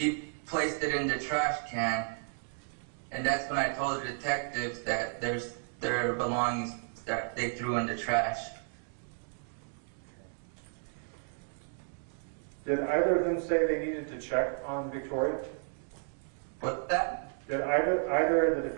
placed it in the trash can. And that's when I told the detectives that there's their belongings that they threw in the trash. Did either of them say they needed to check on Victoria? What's that? Did either the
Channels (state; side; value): silent; left; 56 dB below the other